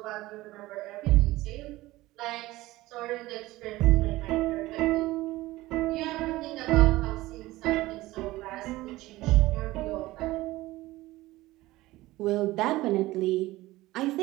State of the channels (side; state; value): left; quieter; 18.3 dB